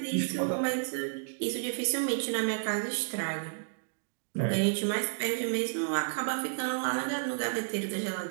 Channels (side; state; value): left; silent; digital silence